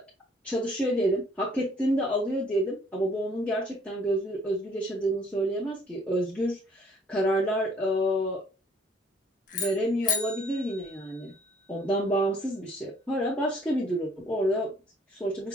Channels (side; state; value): both; normal; correlation 0.60